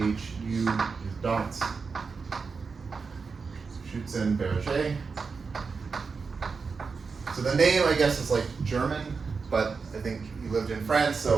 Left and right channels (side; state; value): left; quieter; 4.9 dB